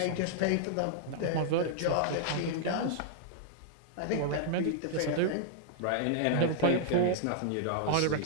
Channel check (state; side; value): different; both; correlation -0.01